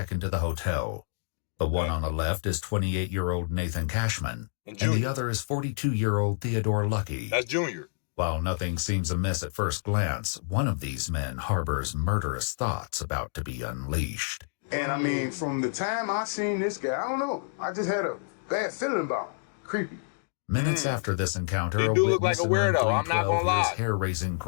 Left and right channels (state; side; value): silent; right; digital silence